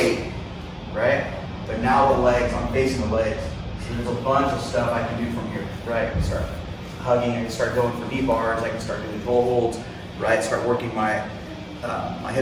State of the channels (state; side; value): identical; both; correlation 1.00